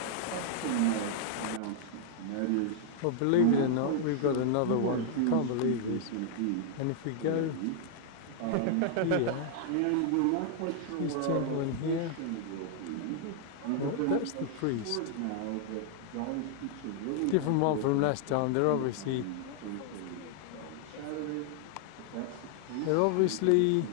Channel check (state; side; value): different; both; correlation -0.01